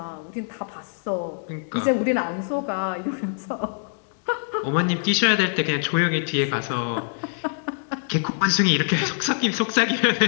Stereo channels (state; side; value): silent; right; digital silence